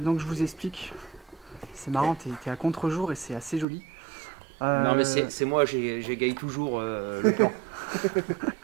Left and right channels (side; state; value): left; drops out; at 3.7 s